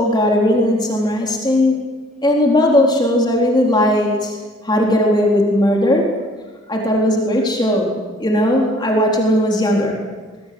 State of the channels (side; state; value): both; normal; correlation 0.57